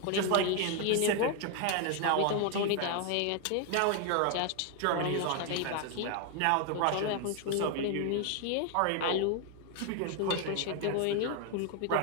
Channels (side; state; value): both; different; correlation 0.01